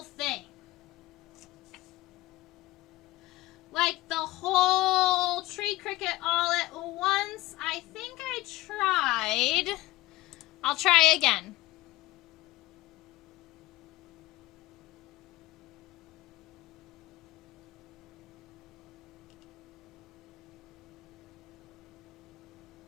thing? Like the whole tree cricket all at once? I think I tried. I'll try again.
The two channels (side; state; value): right; quieter; 18.2 dB